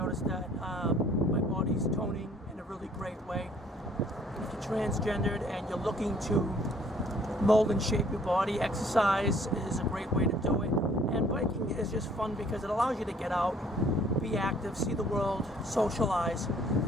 that my body's toning in a really great way. If you're transgendered and you're looking to mold and shape your body, exercise is a great way to do it. And biking is just fun because it allows you to get out, be active, see the world, socialize,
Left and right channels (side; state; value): both; normal; correlation 0.59